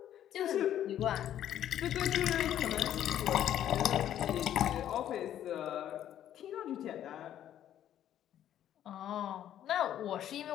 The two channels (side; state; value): right; quieter; 11.1 dB